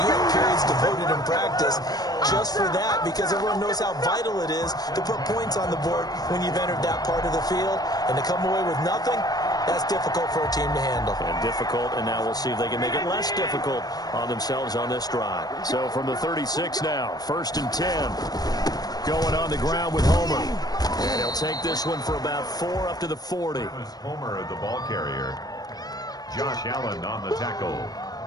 you have periods devoted in practice just for that because everyone knows how vital it is to put points on the board when you've entered that part of the field. And to come away with nothing, that's difficult for a team to handle. And difficult, and now we'll see if they can make it less difficult on themselves on this drive. So from the 36 now, 1st and 10. Going on the ground with Homer. And he'll take this one for about 4 up to the 40. Homer, the ball carrier. Josh Allen on the tackle.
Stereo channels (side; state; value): right; late; 0.19 ms